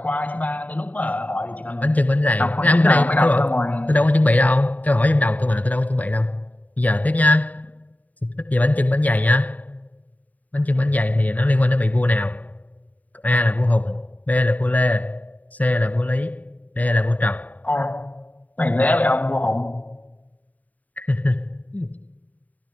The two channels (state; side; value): late; right; 0.074 ms